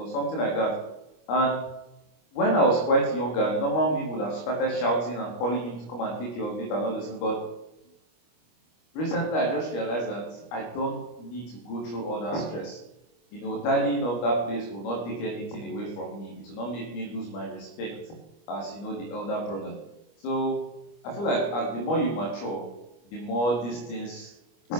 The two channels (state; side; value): late; right; 25 ms